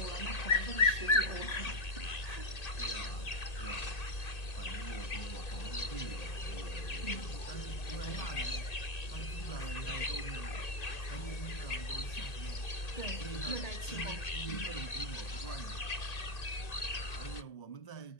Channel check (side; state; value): right; late; 1.8 ms